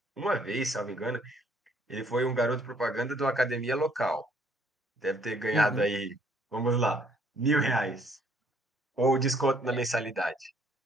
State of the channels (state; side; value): normal; both; correlation 0.64